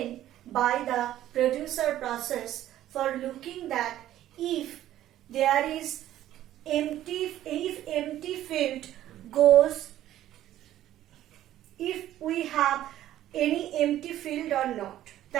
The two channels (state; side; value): quieter; left; 13.0 dB